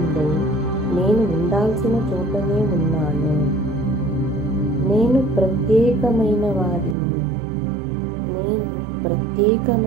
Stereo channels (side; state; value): left; drops out; at 7.0 s